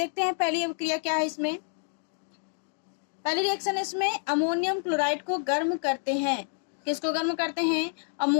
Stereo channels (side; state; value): right; silent; 59 dB below the other